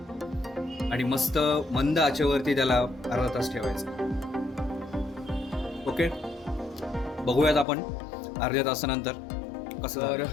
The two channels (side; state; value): right; drops out; at 7.7 s